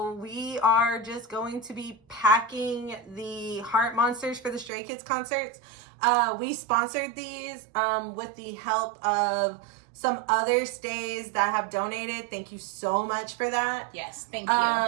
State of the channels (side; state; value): left; drops out; at 4.7 s